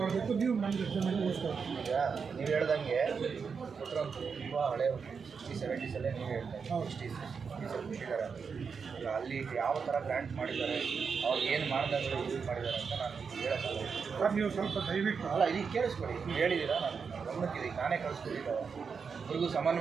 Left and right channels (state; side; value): quieter; left; 5.8 dB